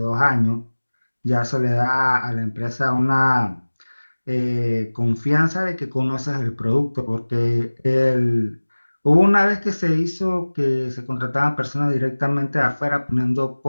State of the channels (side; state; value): both; inverted; correlation -1.00